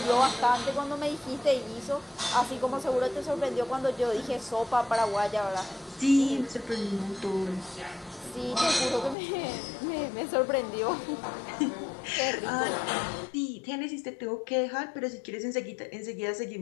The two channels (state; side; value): drops out; right; at 9.2 s